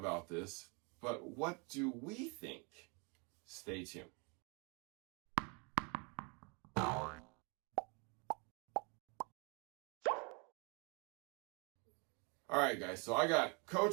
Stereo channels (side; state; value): left; quieter; 32.1 dB